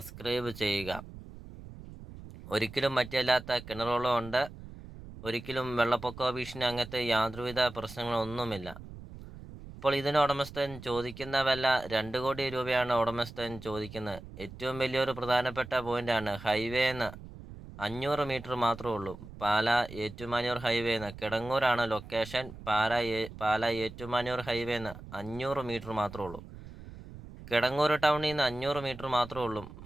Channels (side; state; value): right; noise; rumble, 15 dB below the sound